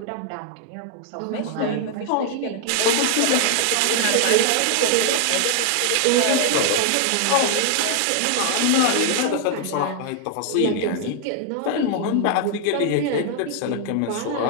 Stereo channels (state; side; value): different; both; correlation 0.00